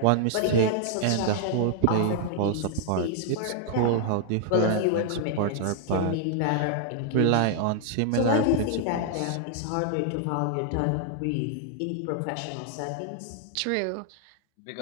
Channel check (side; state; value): both; different; correlation 0.00